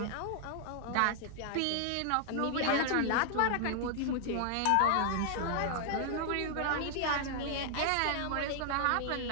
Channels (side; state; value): both; different; correlation 0.00